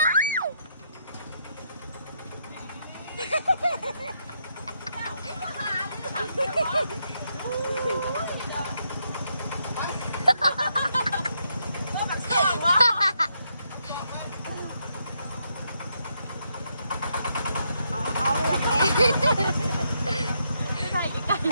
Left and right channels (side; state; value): both; inverted; correlation -0.78